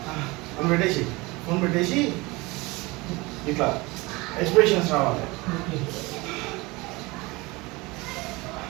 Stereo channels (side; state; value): left; quieter; 23.4 dB